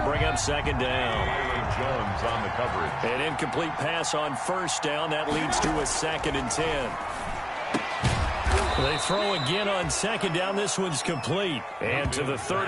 bring up 2nd down. Jones on the coverage. An incomplete pass on first down. That leads to a 2nd and 10. They throw again on 2nd down. This one's complete. And to the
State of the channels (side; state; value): both; identical; correlation 1.00